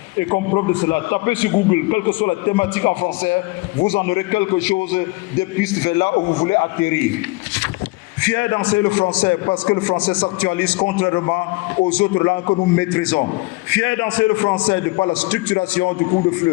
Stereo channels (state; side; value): quieter; right; 23.5 dB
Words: Et comme preuve de cela, tapez sur Google, quelle que soit la thématique en français, vous en aurez quelque chose des pistes vers là où vous voulez atterrir. Fier d'enseigner le français parce que le français s'actualise contrairement aux autres langues que nous maîtrisons. Fier d'enseigner le français de par la structuration du cours de